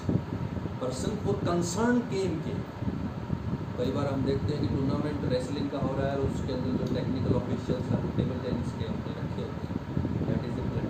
person for concern game के। कई बार हम देखते हैं कि टूर्नामेंट रेसलिंग का हो रहा है और उसके अंदर जो टेक्निकल ऑफिशियल्स हैं वो टेबल टेनिस के हमने रखे होते हैं, दैट इज़ ए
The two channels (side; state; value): both; identical; correlation 1.00